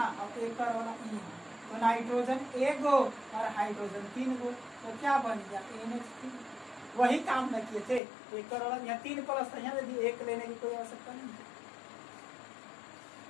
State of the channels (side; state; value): right; drops out; at 8.0 s